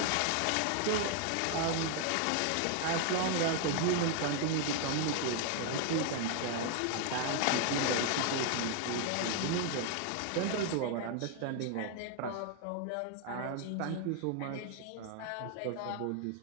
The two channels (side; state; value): both; different; correlation 0.00